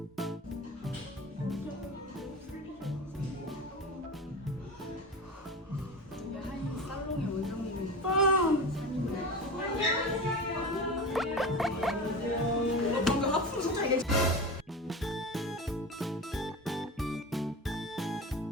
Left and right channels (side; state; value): both; normal; correlation 0.28